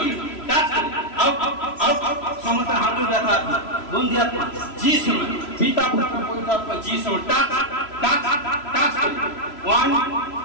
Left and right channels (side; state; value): right; late; 3.0 ms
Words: টাচ করি। আউট আউট সমস্ত হাঁটুর ব্যথা আত্মা, বন্ধি আত্মা যিশু নামে। পিতা পুত্র পবিত্র আত্মা যিশু নামে, টাচ টাচ টাচ করি। 1